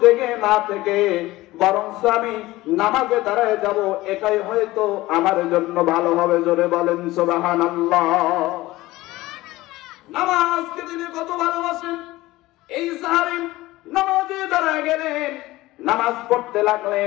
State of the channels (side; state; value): right; quieter; 18.3 dB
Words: জেগে না থেকে বরং আমি নামাজে দাঁড়ায় যাব, এটাই হয়তো আমার জন্য ভালো হবে। জোরে বলেন সুবহানাল্লাহ। নামাজকে তিনি কত ভালোবাসেন। এই সাহাবী নামাজে দাঁড়ায় গেলেন, নামাজ পড়তে